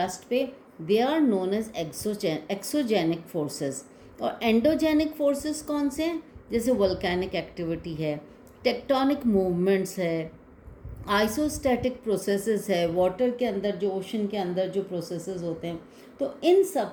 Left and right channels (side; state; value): both; identical; correlation 1.00